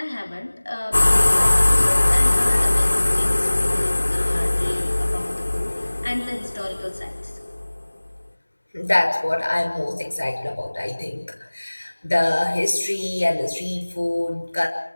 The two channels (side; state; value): both; inverted; correlation -1.00